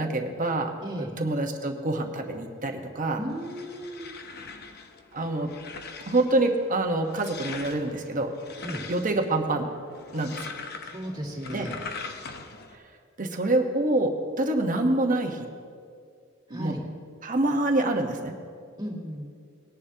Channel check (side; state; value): both; normal; correlation 0.42